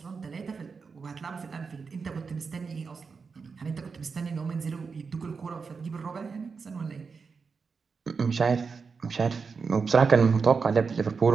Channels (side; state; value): left; quieter; 5.2 dB